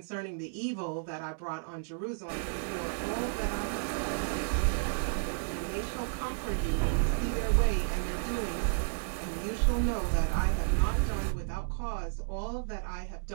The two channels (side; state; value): left; silent; digital silence